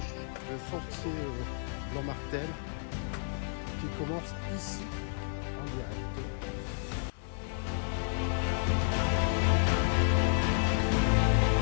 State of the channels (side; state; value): right; silent; 57 dB below the other